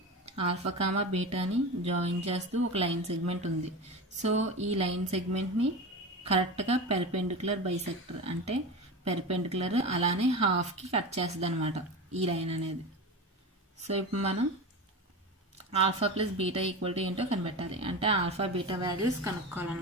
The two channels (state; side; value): normal; both; correlation 0.25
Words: ఆల్ఫా, బీటాని జాయిన్ చేస్తూ ఒక లైన్ సెగ్మెంట్ ఉంది. సో ఈ లైన్ సెగ్మెంట్ని కరెక్ట్గా పెర్పెండిక్యులర్ బైసెక్టర్ అంటే పెర్పెండిక్యులర్ అలానే హాఫ్కి కట్ చేస్తుంది అనమాట ఈ లైన్ అనేది. సో ఇప్పుడు మనం alpha plus beta equal to ఏంటో కనిపెట్టాలి. అంటే ఆల్ఫా బీటా వాల్యూస్